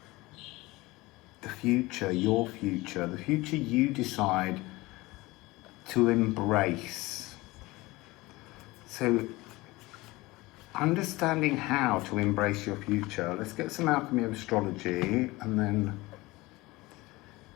The future, your future, the future you decide to embrace. So, understanding how to embrace your future. Let's get some Alchemy of Astrology, and then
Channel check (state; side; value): quieter; right; 21.1 dB